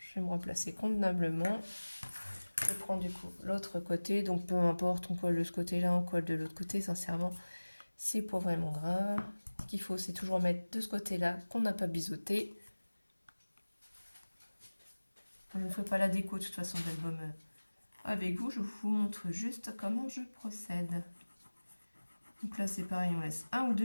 vais me replacer convenablement. Je prends du coup l'autre côté, donc peu importe, on colle de ce côté-là, on colle de l'autre côté, sincèrement, c'est pas vraiment grave. Ce qu'il faut, c'est toujours mettre de ce côté-là qu'on n'a pas biseauté. Je ne fais pas la déco de toute façon de l'album avec vous, je vous montre juste comment je procède. Donc là c'est pareil, on laisse 1 ou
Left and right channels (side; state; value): both; inverted; correlation -1.00